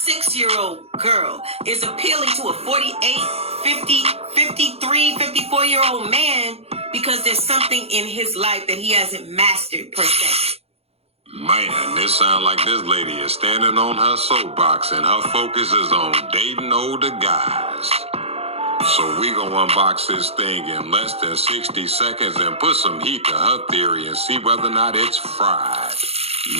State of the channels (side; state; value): left; late; 0.29 ms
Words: girl is appealing to a 48, 50, 53, 54-year-old man because there's something in his life that he hasn't mastered per se. Man, this sound like this lady is standing on her soapbox and her focus is on dating older guys. So we gonna unbox this thing in less than 60 seconds and put some heat to her theory and see whether or not it's fried.